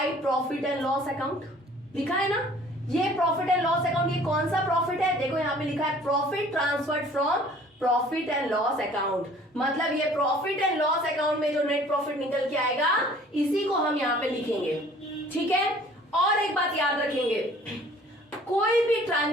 profit and loss account लिखा है ना। ये प्रॉफिट एंड लॉस अकाउंट, ये कौन सा प्रॉफिट है, देखो यहाँ पे लिखा है profit transferred from profit and loss account, मतलब ये प्रॉफिट एंड लॉस अकाउंट में जो नेट प्रॉफिट निकल के आएगा इसी को हम यहाँ पे लिखेंगे, ठीक है। और एक बात याद रखेंगे, कोई भी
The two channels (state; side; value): normal; both; correlation 0.52